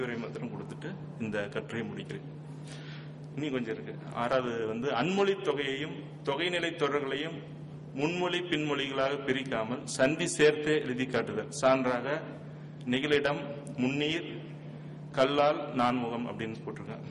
மாத்திரம் கொடுத்துட்டு இந்த கட்டுரையை முடிக்கிறேன். இனி கொஞ்சம் இருக்கு. 6வது வந்து அன்மொழி தொகையையும் தொகைநிலை தொடர்களையும் முன்மொழி பின்மொழிகளாக பிரிக்காமல் சந்தி சேர்த்தே எழுதி காட்டுதல். சான்றாக நெகிழிடம், முன்னீர், கல்லால், நான்முகம் அப்படின்னு போட்டிருக்கேன்.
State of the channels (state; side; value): identical; both; correlation 1.00